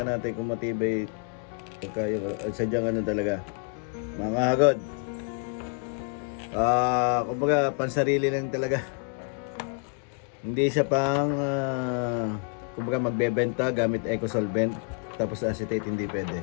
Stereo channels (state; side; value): quieter; right; 37.4 dB